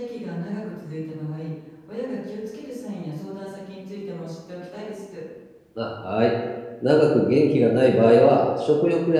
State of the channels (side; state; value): both; identical; correlation 1.00